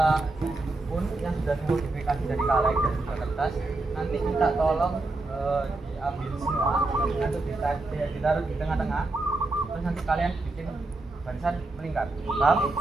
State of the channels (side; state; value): left; quieter; 3.1 dB